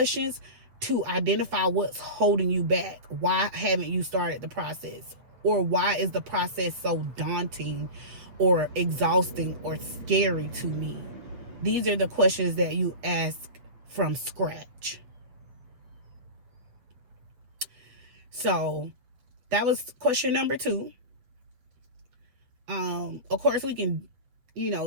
to identify what's holding you back. Why haven't you started the process? Or why is the process so daunting or exhausting or scary to me? These are the questions that you ask from scratch. So that was question number 2. Of course, we can,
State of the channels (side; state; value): left; late; 8.3 ms